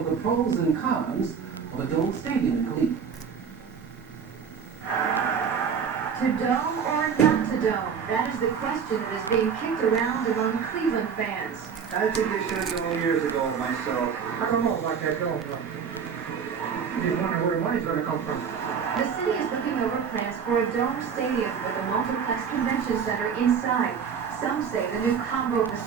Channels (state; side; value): quieter; left; 6.8 dB